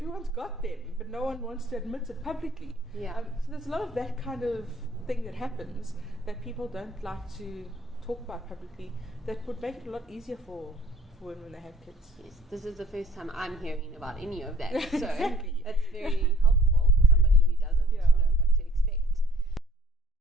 got them, but no one wants to admit it publicly. So there's a lot of that kind of thing that happens that people don't like to talk about publicly, that would make it a lot easier for women when they have kids. Yes, this is the first time I'm hearing about any of that, so exactly. that's very helpful.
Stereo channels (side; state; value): both; normal; correlation 0.56